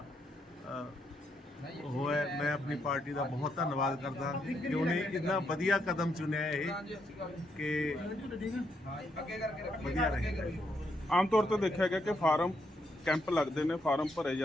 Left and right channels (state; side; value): normal; both; correlation 0.77